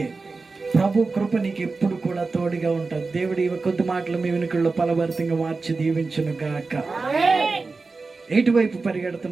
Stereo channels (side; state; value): left; quieter; 4.0 dB